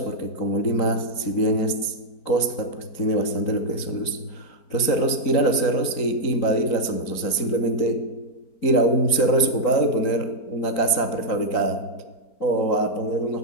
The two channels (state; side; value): late; right; 4.5 ms